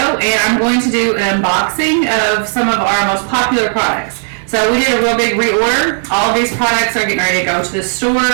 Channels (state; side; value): silent; left; 61 dB below the other